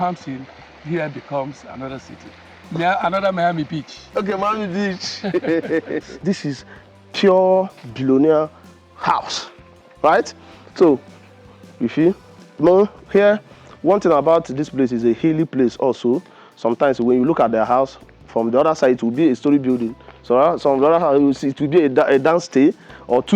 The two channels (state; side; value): identical; both; correlation 1.00